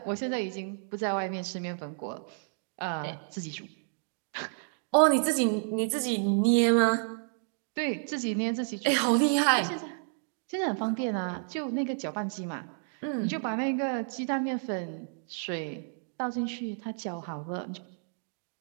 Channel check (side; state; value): left; silent; digital silence